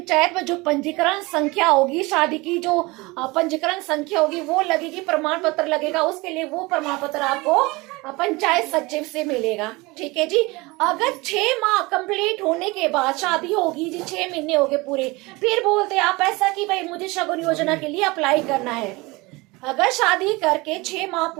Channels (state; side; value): quieter; left; 23.5 dB